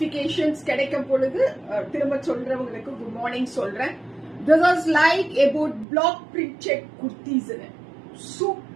கிடைக்கும் பொழுது திரும்ப சொல்றவங்களுக்கு good morning சொல்றேன். This is like about block printed kurtis.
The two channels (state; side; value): drops out; left; at 5.9 s